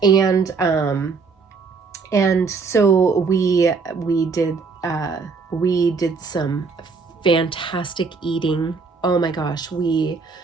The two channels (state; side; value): quieter; left; 4.8 dB